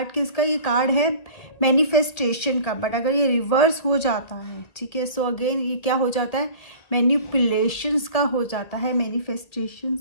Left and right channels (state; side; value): late; right; 2.0 ms